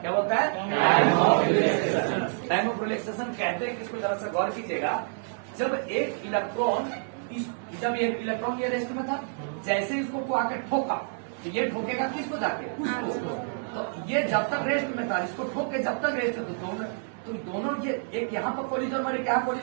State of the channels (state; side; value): silent; left; digital silence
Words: क्या बोलता है, time of relaxation. Time of relaxation कहते हैं, किसको जरा सा गौर कीजिएगा। जब एक इलेक्ट्रॉन जब एक इलेक्ट्रॉन ये रेस्ट में था, जैसे इसको को आकर ठोका तो ये ठोकेगा किसको जाके, उसको। तो ये जब तक रेस्ट में था, इसको ठोक के जब तक रेस्ट में तो दोनों ये एक यहाँ पर कोलिजन और एक यहाँ